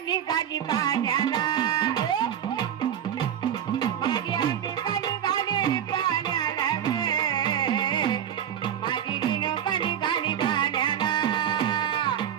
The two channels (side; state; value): left; quieter; 9.6 dB